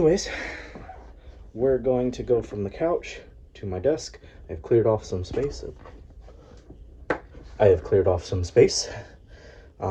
we're going to go from the couch to my desk. I've cleared off some space.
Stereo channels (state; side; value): identical; both; correlation 1.00